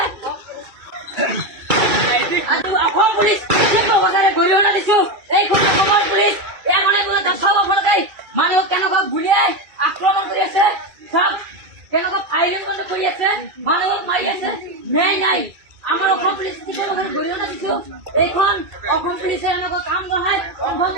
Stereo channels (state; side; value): late; left; 2.3 ms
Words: অসম পুলিচ গৰিহণা দিছো। এইখন অসমৰ পুলিচ মানুহক কেনেকুৱা গুলিয়াই আক্ৰমণ কৰি আছে, চব কেনেকুৱা ফায়াৰিং বন্ধ কৰি আছে, মানুহক মাৰি আছে। ন্যায় নাই। আমাৰ অসম পুলিচ গৰিহণা দিছো। এইখন অসম পুলিচে এনেকুৱা কাম বঢ়াই কনফাৰ্ম